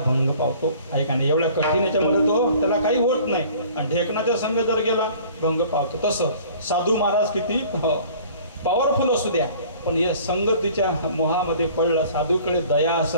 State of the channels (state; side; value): inverted; both; correlation -0.50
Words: भंग पावतो, आहे का नाही. एवढ्या कठीण याच्यामध्ये तो त्याला काही होत नाही, आणि ढेकणाचा संघ जर गेला भंग पावतो. तसं साधू महाराज किती पॉवरफुल असू द्या, पण या संगतीच्या मोहामध्ये पडला. साधूकडे दया